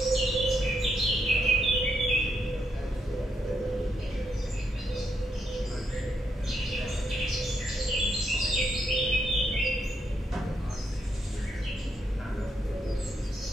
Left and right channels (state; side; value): normal; both; correlation 0.78